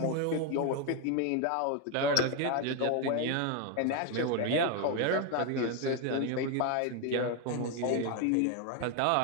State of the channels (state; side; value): different; both; correlation 0.01